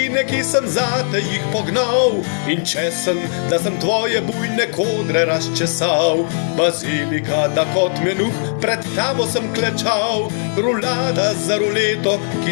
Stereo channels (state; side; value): silent; right; 66 dB below the other